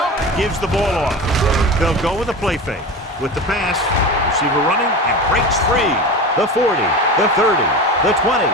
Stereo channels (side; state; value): both; normal; correlation 0.28